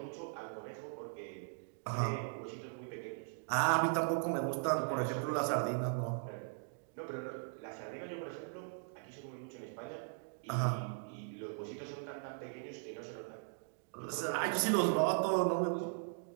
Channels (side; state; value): left; silent; digital silence